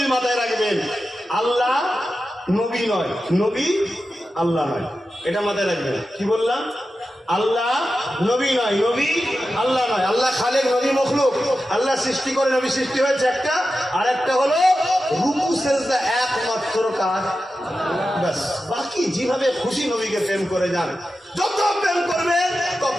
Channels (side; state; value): both; normal; correlation 0.92